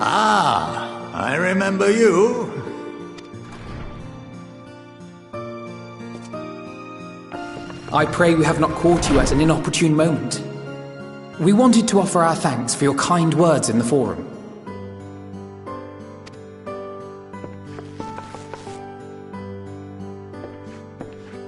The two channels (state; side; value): identical; both; correlation 1.00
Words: Ah, I remember you. I pray we have not caught you at an inopportune moment. We wanted to offer our thanks for your kind words in the forum.